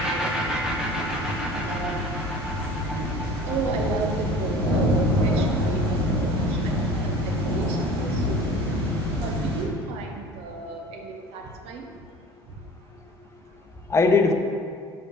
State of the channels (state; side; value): normal; both; correlation 0.43